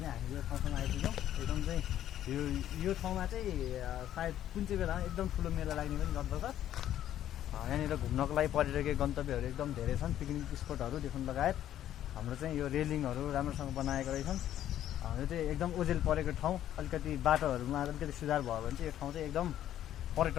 हामी यो ठाउँसम्म आइपुग्यौँ एकदम चाहिँ यो ठाउँमा चाहिँ सायद कुन चाहिँ बेलामा एकदम ठुलो मेला लाग्ने पनि गर्दछ यहाँनिर घुम्नको लागि पर्यटकीय गन्तव्यहरू एकदम धेरै छन् पिकनिक स्पोटहरूदेखि लगायत हाम्रो चाहिँ यो रेलिङहरू राम्रोसँग बनाएको रहेछन् यो चाहिँ एकदम ओझेल परेको ठाउँ अलिकति बाटोहरूमा अलिकति सुधार भयो भने चाहिँ यो ठाउँ चाहिँ एकदम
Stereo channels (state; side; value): quieter; right; 11.7 dB